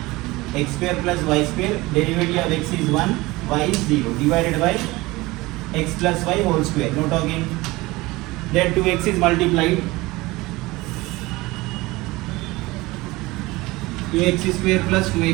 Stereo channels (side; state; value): left; quieter; 20.9 dB